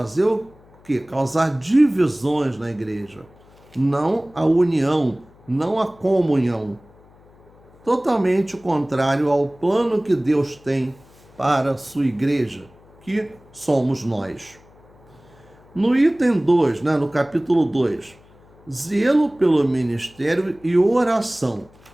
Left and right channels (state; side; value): noise; left; hum, 27 dB below the sound